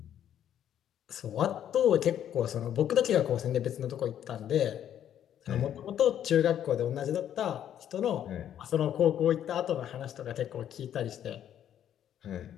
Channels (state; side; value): quieter; right; 10.3 dB